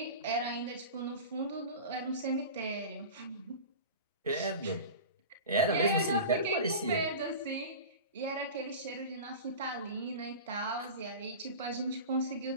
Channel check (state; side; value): inverted; both; correlation -0.32